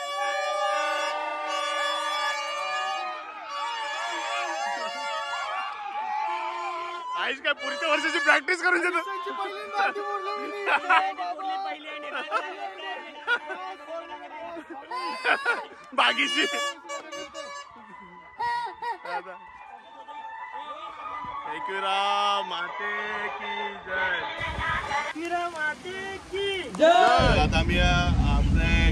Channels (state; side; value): identical; both; correlation 1.00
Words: आईस काय पुढच्या वर्षाची प्रॅक्टिस करून देतो बागीची माते की जय आता आम्ही आपल्या